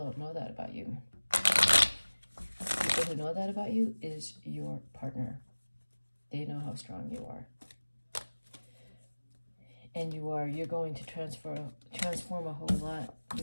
know that about you. People who know that about you is your partner. They know how strong you are. And you're going to transform a whole lot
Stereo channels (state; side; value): inverted; both; correlation -1.00